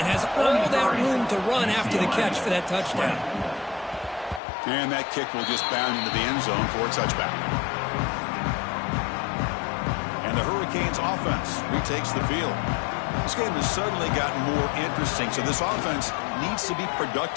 has all that room to run after the catch for that touchdown. And that kick will just bound into the end zone for a touchback. And the Hurricanes offense retakes the field. This game has suddenly gotten more interesting, so this offense needs to be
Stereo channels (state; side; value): drops out; right; at 4.4 s